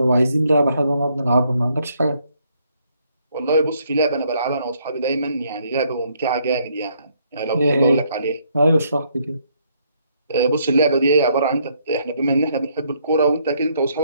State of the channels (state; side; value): inverted; both; correlation -0.70